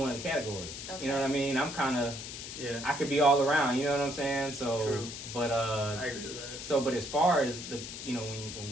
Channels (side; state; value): left; noise; hiss, 9 dB below the sound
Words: of the categories. Okay. You know what I mean? I'm kind of Yeah. I could be all around. You know what I'm saying? So, True. but I agree with that. so, but as far as the, you know, when